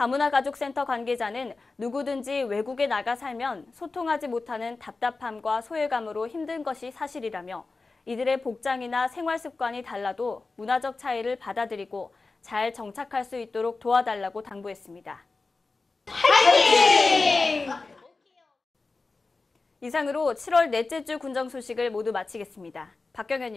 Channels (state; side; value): quieter; right; 3.8 dB